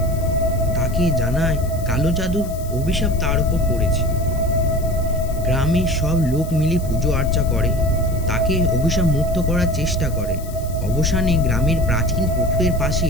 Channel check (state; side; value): noise; left; hiss, 18 dB below the sound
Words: তাকে জানায় কালো জাদুর অভিশাপ তার উপর পড়েছে। গ্রামের সব লোক মিলে পুজো আর্চা করে, তাকে অভিশাপ মুক্ত করার চেষ্টা করে। অবসানে গ্রামের প্রাচীন পুকুরের পাশে